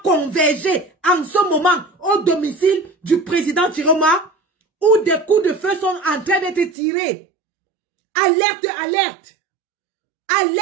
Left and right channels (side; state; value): left; drops out; at 6.8 s